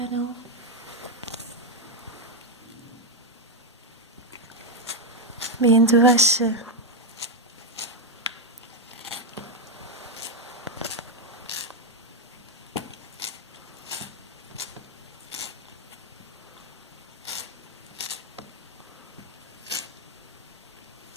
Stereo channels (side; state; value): both; normal; correlation 0.02